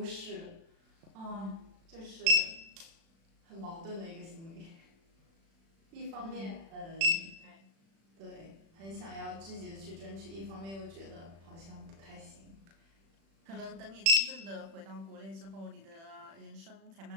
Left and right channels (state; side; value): late; left; 36 ms